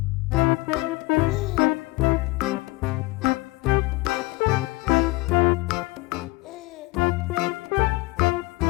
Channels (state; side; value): quieter; right; 22.6 dB